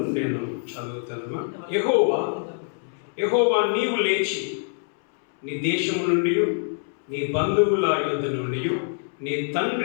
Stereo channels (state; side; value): silent; right; 62 dB below the other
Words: నేను చదువుతాను. యెహోవా నీవు లేచి నీ దేశము నుండి, నీ బంధువుల యొద్ద నుండి, నీ